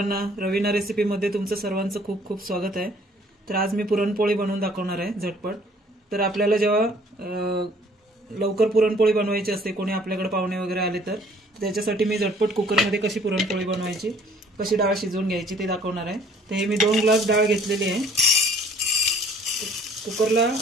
रवीना रेसिपीमध्ये तुमचं सर्वांचं खूप खूप स्वागत आहे। तर आज मी पुरणपोळी बनवून दाखवणार आहे झटपट। तर आपल्याला जेव्हा लवकर पुरणपोळी बनवायची असते, कोणी आपल्याकडे पाहुणे वगैरे आले तर त्याच्यासाठी मी झटपट कुकरमध्ये कशी पुरणपोळी बनवायची, कशी डाळ शिजवून घ्यायची ते दाखवणार आहे। तर हे मी 2 ग्लास डाळ घेतलेली आहे। कुकरला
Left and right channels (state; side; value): normal; both; correlation 0.57